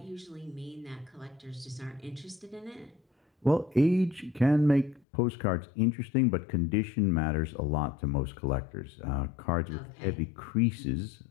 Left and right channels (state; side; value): drops out; right; at 5.0 s